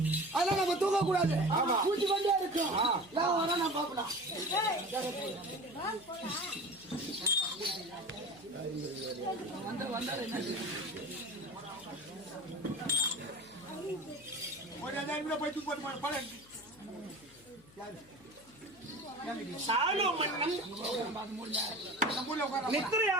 அதெல்லாம் நம்ம தூங்க கூடாது. பூச்சி கொண்டே இருக்கும். நான் வர நான் பார்க்கலாம்.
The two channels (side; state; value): left; noise; hum, 25 dB below the sound